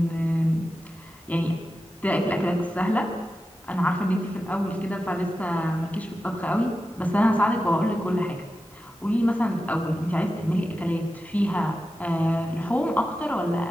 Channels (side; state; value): both; normal; correlation 0.92